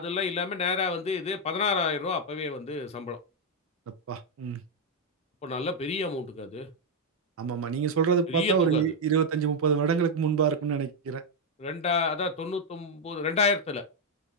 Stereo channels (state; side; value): normal; both; correlation 0.00